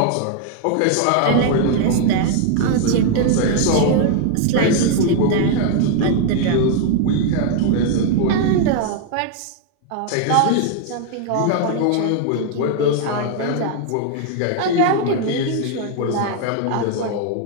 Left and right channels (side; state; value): both; different; correlation 0.00